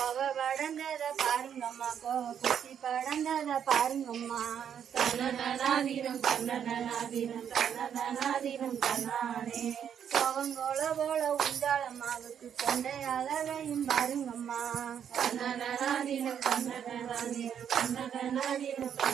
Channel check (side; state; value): left; quieter; 8.6 dB